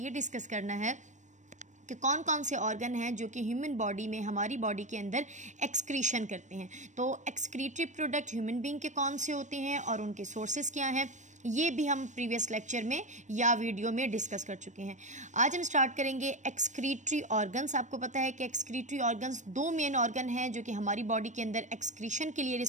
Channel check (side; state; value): left; late; 0.35 ms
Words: डिस्कस करना है कि कौन कौन से ऑर्गन हैं जो कि ह्यूमन बॉडी में, हमारी बॉडी के अंदर एक्सक्रीशन करते हैं। तो एक्सक्रीटरी प्रोडक्ट ह्यूमन बीइंग के कौन से होते हैं और उनके सोर्सेज क्या हैं, ये भी हम प्रीवियस लेक्चर में या वीडियो में डिस्कस कर चुके हैं। आज हम स्टार्ट करेंगे एक्सक्रीटरी ऑर्गन्स। आपको पता है कि एक्सक्रीटरी ऑर्गन्स दो मेन ऑर्गन हैं जो कि हमारी बॉडी के अंदर एक्सक्रीशन के लिए